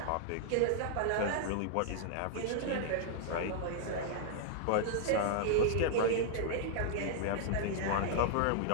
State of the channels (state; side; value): different; both; correlation -0.01